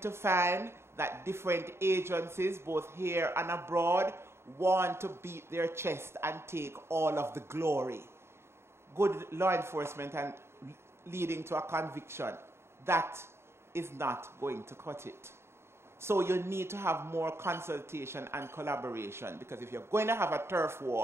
to find that different agencies, both here and abroad, want to beat their chest and take all of the glory. Good law enforcement and leading to a conviction, that is not going to cut it. So you need to have more consultation and collaboration, because if you're going to have a turf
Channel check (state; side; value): late; left; 0.12 ms